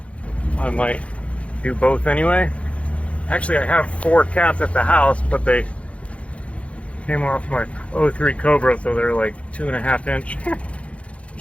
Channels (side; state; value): right; late; 0.063 ms